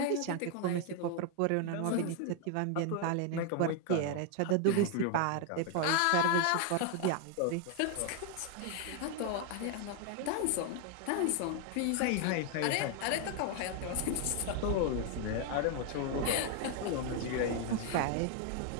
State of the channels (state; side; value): different; both; correlation 0.00